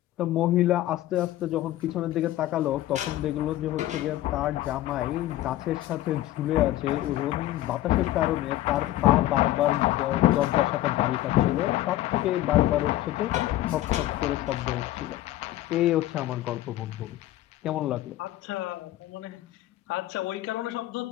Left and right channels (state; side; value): quieter; right; 15.0 dB